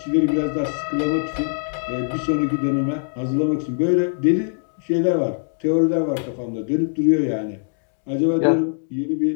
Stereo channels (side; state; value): right; silent; digital silence